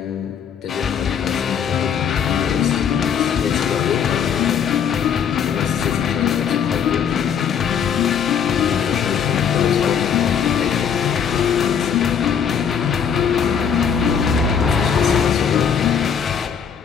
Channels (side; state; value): right; quieter; 7.5 dB